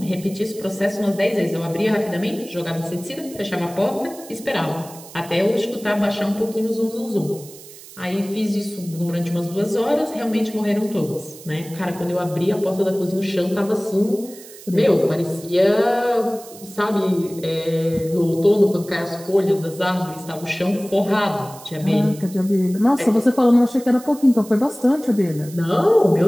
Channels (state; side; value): noise; right; hiss, 18 dB below the sound